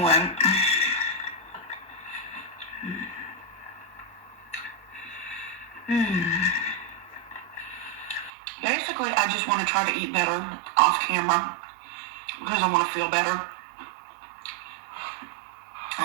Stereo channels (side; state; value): left; drops out; at 8.3 s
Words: Basically, I just want to try to eat better off camera because I want to feel better. I